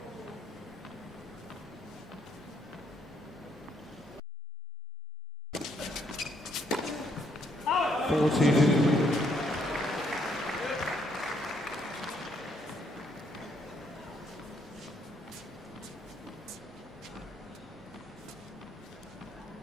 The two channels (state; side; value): normal; both; correlation 0.71